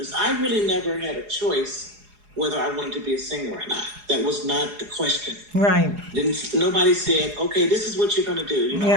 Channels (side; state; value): left; late; 4.8 ms